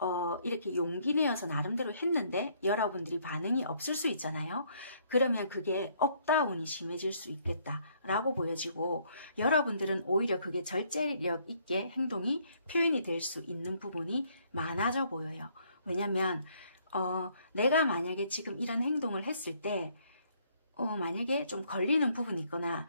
이렇게 용기 내어서 나름대로 했는데 여러분들이 반응이 없을 수 있잖아요. 그러면 그게 업다운이 심해질 수 있겠다라고 보여지고, 여러분들은 오히려 그게 절제력 있게 행동이 표현이 될 수 있는 부분이 많아져 보여요. 왜냐면 내가 만약에 지금 이런 행동을 했을 때 만약에 좀 걸리는 부분이 있거나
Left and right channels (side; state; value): both; inverted; correlation -0.66